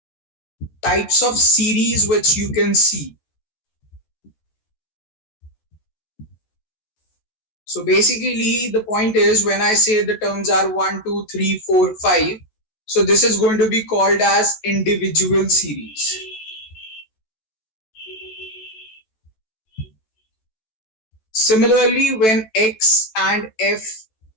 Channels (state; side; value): late; right; 14 ms